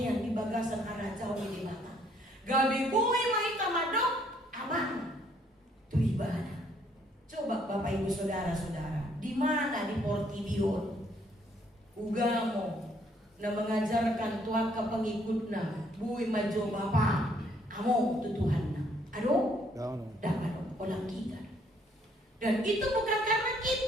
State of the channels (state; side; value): normal; both; correlation 0.66